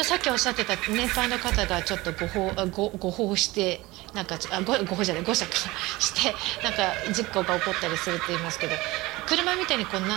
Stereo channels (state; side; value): quieter; left; 20.6 dB